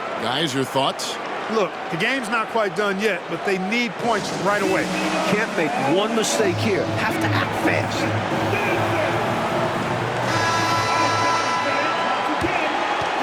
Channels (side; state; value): both; identical; correlation 1.00